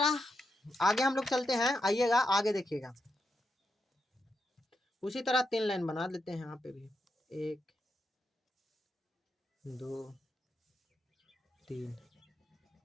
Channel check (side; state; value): both; normal; correlation 0.85